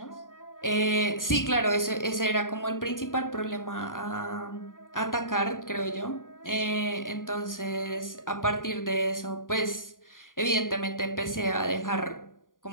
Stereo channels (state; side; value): late; right; 0.89 ms